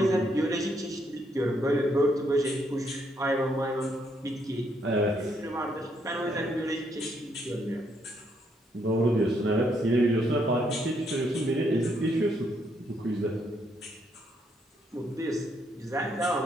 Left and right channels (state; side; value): normal; both; correlation 0.74